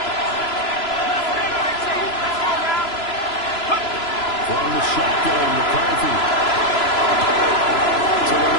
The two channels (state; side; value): late; right; 3.0 ms